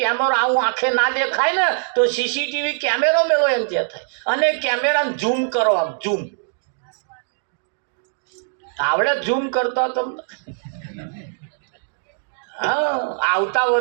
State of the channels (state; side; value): silent; left; digital silence